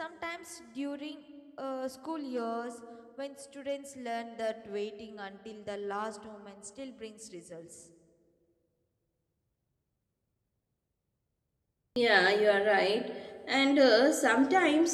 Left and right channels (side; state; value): both; identical; correlation 1.00